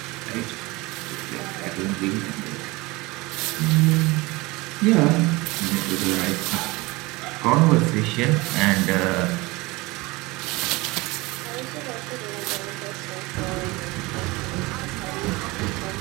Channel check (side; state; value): left; quieter; 22.9 dB